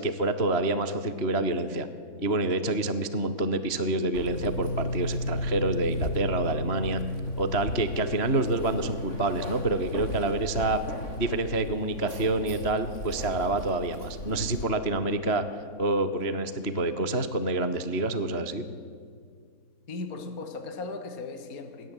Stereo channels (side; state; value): right; late; 3.5 ms